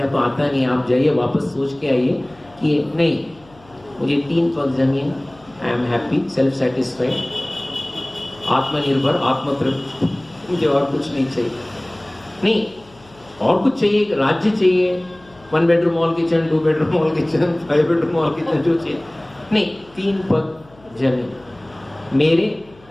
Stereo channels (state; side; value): noise; left; hum, 27 dB below the sound